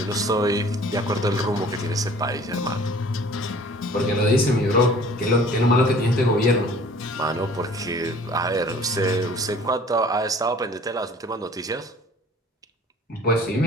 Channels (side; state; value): both; normal; correlation 0.50